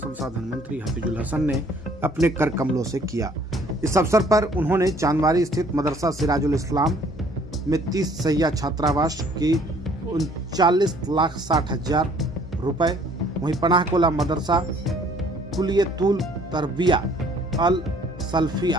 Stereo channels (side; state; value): both; normal; correlation 0.59